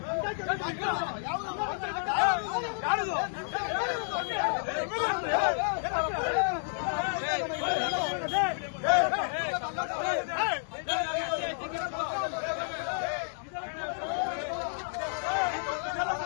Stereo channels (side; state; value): right; silent; digital silence